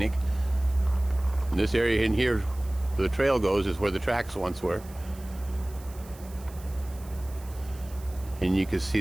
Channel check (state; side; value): noise; right; hiss, 22 dB below the sound